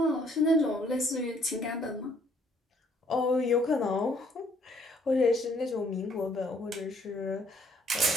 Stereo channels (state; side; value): normal; both; correlation 0.65